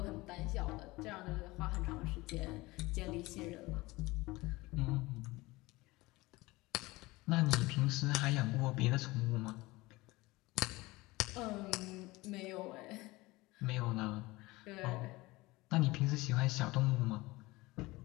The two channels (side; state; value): right; quieter; 21.1 dB